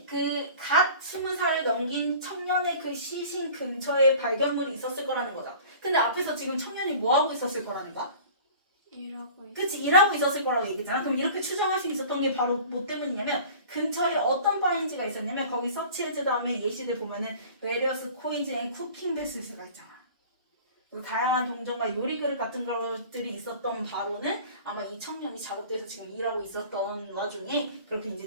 그 갓 20살을 넘긴 청년의 그 시신 근처에 발견물이 있었을 거라는 거다. 근데 앞에서 지금 청년이 뭐하고 있었을 거라는 거야? 일하고 그치 일하고 있었을 거라고 얘기했잖아. 그럼 이렇게 추정할 수 있었던 게 바로 뭐 때문이냐면 근처에 어떤 파인지가 있었냐면 거기 서치해즈 다음에 예시들 보면은 various coins and cooking vessels가 있잖아. 그 다양한 동전과 요리그릇 같은 것들이 있었던 바로는 아마 이 청년이 작업대에서 지금 일하고 있었던 와중에 그렇게 이제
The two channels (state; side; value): inverted; both; correlation -0.43